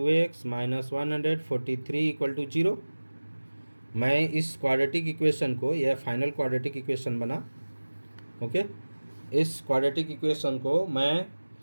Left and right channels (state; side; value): inverted; both; correlation -1.00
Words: minus 143 equal to 0। मैं इस क्वाड्रेटिक इक्वेशन को, यह फाइनल क्वाड्रेटिक इक्वेशन बना, ओके, इस क्वाड्रेटिक इक्वेशन को मैं